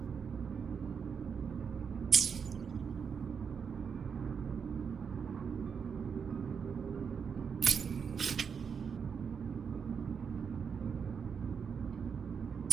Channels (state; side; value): quieter; left; 6.5 dB